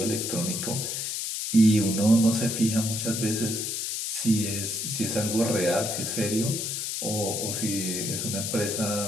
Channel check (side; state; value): left; noise; hiss, 3 dB below the sound